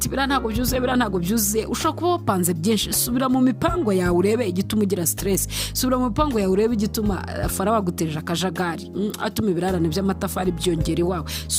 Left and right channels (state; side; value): identical; both; correlation 1.00